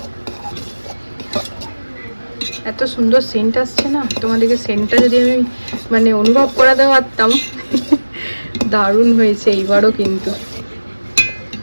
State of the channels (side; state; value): both; inverted; correlation -1.00